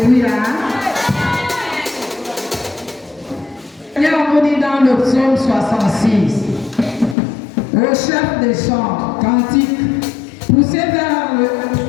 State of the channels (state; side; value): drops out; right; at 7.2 s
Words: Seigneur, on vous dit dans le psaume 66. Au chef des chants, cantique, poussez vers le